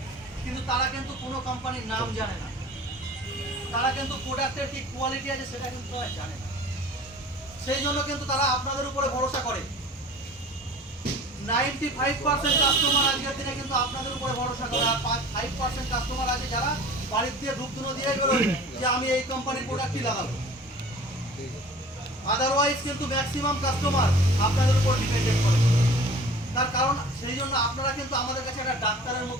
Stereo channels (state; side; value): normal; both; correlation 0.44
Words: কিন্তু তারা কিন্তু কোনো কোম্পানির নাম জানে না। তারা কিন্তু প্রোডাক্টের কি কোয়ালিটি আছে সেটা কিন্তু তারা জানে না। সেই জন্য কিন্তু তারা আপনাদের উপরে ভরসা করে। 95% কাস্টমার আজকের দিনে কিন্তু আপনাদের উপরে ভরসা করে, আর 5% কাস্টমার আছে যারা বাড়ির দিয়ে ধূপধুনো দিয়ে বেরোয় যে আমি এই কোম্পানির প্রোডাক্টই লাগাবো। আদারওয়াইজ কিন্তু ম্যাক্সিমাম কাস্টমার আপনাদের উপর ডিপেন্ডেন্ট করে। তার কারণ সেই জন্য আপনারা কিন্তু আমাদের কাছে একটা ডাক্তারের